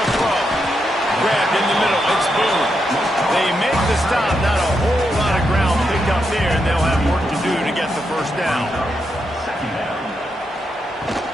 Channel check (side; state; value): both; normal; correlation 0.83